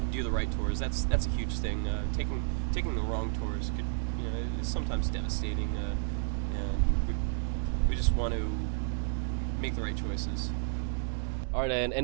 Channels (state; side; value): silent; left; digital silence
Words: do the right tours. That's a huge thing. Taking the wrong tours could is sometimes devastating. And we just want to make the right choices. All right, and